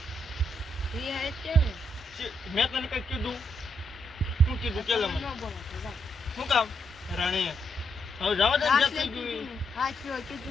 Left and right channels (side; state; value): both; normal; correlation 0.79